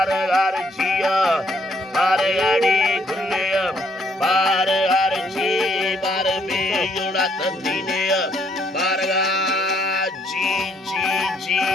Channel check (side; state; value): both; normal; correlation 0.68